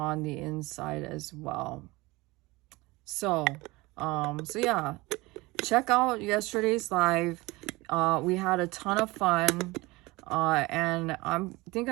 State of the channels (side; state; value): left; quieter; 22.0 dB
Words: the inside as well. So so yeah, check out yesterday's live. We had a ton of fun, and I think